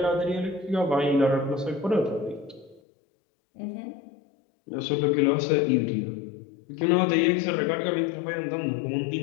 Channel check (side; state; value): right; drops out; at 2.8 s